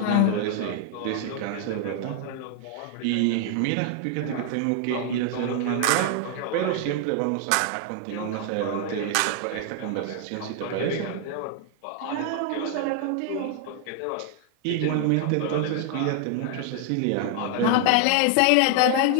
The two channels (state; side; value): different; both; correlation 0.00